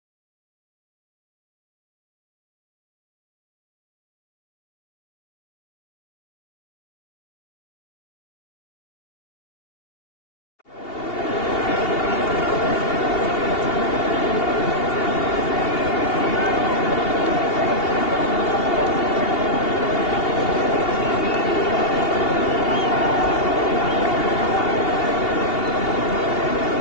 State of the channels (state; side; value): late; right; 2.8 ms